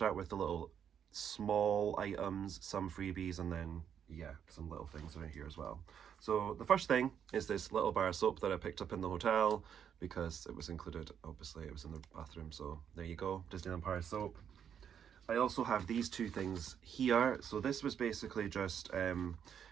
with the little small items, some freebies, and then yeah, some little things around here as well. So the first thing is this little bar of soap that I picked up in the hotel because it was included, obviously it was in the bathroom, so there you go, Disneyland Paris soap. I also have these two things here. So this was basically just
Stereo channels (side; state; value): left; quieter; 8.4 dB